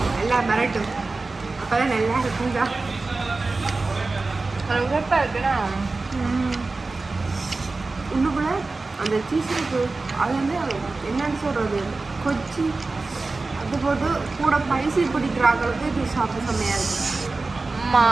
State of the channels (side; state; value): left; quieter; 3.6 dB